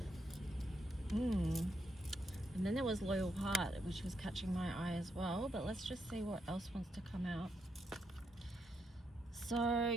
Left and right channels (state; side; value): normal; both; correlation 0.80